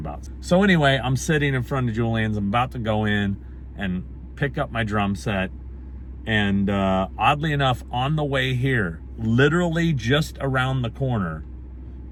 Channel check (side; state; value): both; identical; correlation 1.00